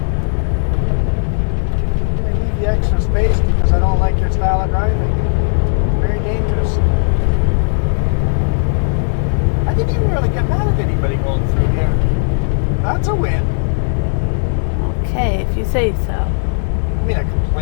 I'm going to leave you extra space because I don't like your style of driving. Very dangerous. I didn't even really get mad at anybody going through here. That's a win. Okay, if you say so. I mean, I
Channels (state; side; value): silent; right; 65 dB below the other